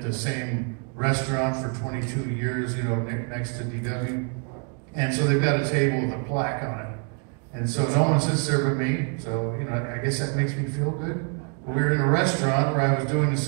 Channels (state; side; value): quieter; left; 37.8 dB